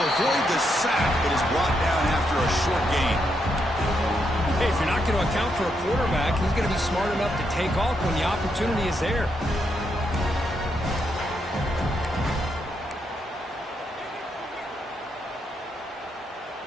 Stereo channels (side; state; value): both; normal; correlation 0.80